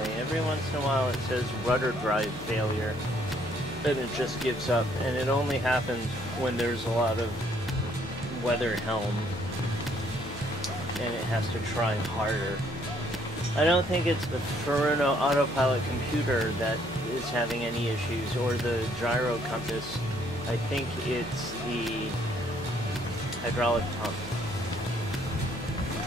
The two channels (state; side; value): noise; left; hum, 16 dB below the sound